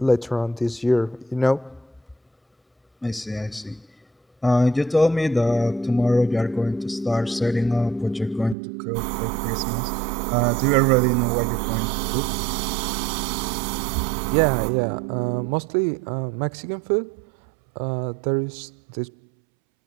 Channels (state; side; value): drops out; left; at 8.6 s